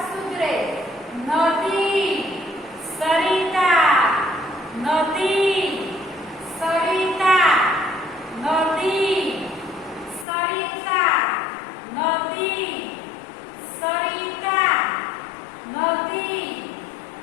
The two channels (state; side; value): drops out; right; at 10.2 s